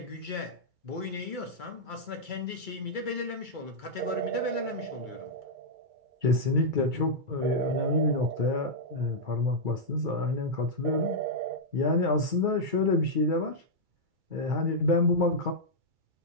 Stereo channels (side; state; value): left; late; 2.3 ms